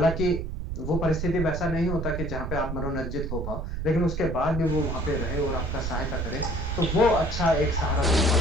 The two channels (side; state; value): right; noise; rumble, 4 dB below the sound